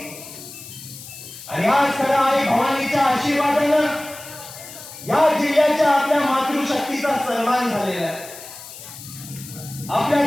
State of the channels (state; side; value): noise; left; hiss, 15 dB below the sound